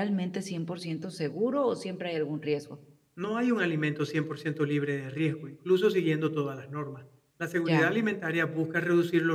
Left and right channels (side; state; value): both; identical; correlation 1.00